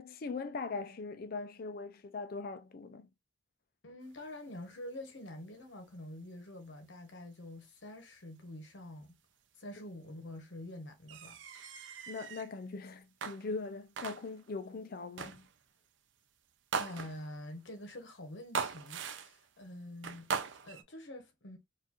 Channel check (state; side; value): normal; both; correlation -0.03